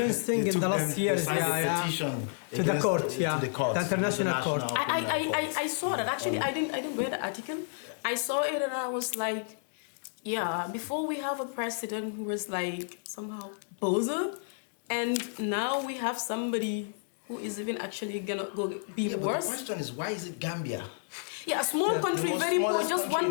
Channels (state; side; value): silent; right; digital silence